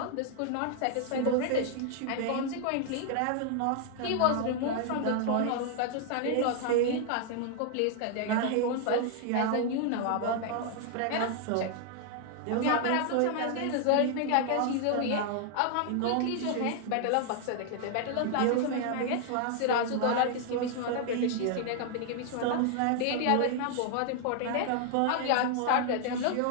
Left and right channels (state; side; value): different; both; correlation 0.00